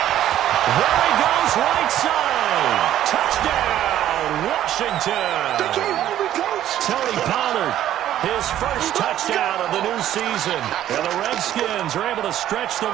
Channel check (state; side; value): quieter; left; 12.1 dB